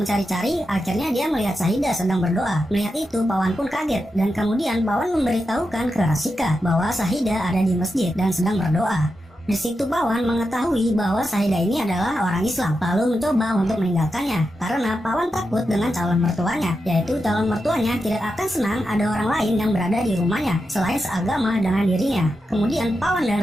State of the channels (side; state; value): both; normal; correlation 0.88